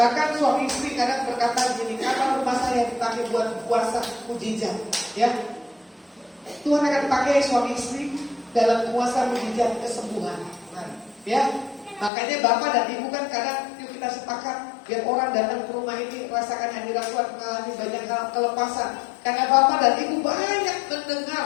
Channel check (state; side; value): drops out; right; at 12.1 s